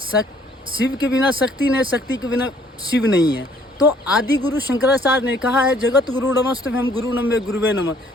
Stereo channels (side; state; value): both; normal; correlation 0.61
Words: शिव के बिना शक्ति नहीं, शक्ति के बिना शिव नहीं है। तो आदि गुरु शंकराचार्य ने कहा है जगत गुरु नमस्तुभ्यं गुरु नमः गुरुवे नमः।